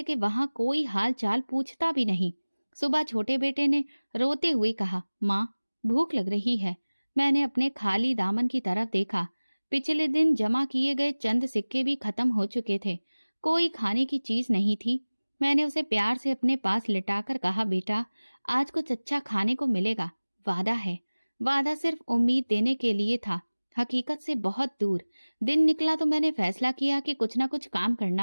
के वहां कोई हाल चाल पूछता भी नहीं। सुबह छोटे बेटे ने रोते हुए कहा, माँ भूख लग रही है। मैंने अपने खाली दामन की तरफ देखा। पिछले दिन जमा किए गए चंद सिक्के भी खत्म हो चुके थे। कोई खाने की चीज नहीं थी। मैंने उसे प्यार से अपने पास लिटाकर कहा, बेटा आज कुछ अच्छा खाने को मिलेगा, वादा है। वादा सिर्फ उम्मीद देने के लिए था, हकीकत से बहुत दूर। दिन निकला तो मैंने फैसला किया कि कुछ ना कुछ काम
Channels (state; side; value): inverted; both; correlation -1.00